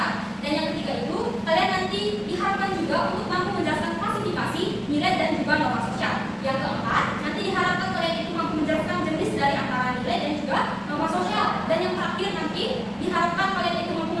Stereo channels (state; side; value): identical; both; correlation 1.00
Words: Dan yang ketiga itu, kalian nanti diharapkan juga untuk mampu menjelaskan klasifikasi, nilai dan juga norma sosial. Yang keempat, nanti diharapkan kalian itu mampu menjelaskan jenis dari antara nilai dan juga norma sosial. Dan yang terakhir nanti diharapkan kalian itu mampu